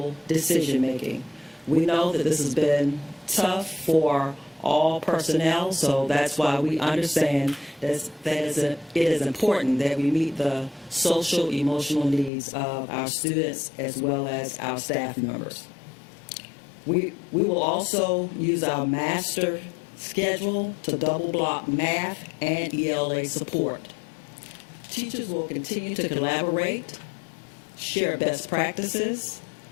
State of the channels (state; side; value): drops out; right; at 12.3 s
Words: decision-making. We know that this has been tough for all personnel, so that's why we understand that it is important that we meet the social, emotional needs of our students as well as our staff members. We will also use our master schedule to double block math and ELA support. Teachers will continue to collaborate, share best practices,